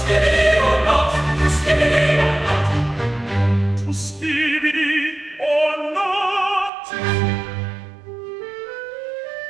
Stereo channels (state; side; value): drops out; left; at 6.7 s